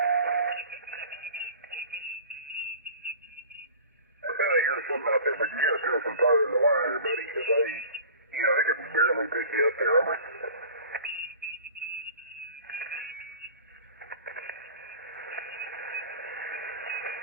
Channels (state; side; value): inverted; both; correlation -0.41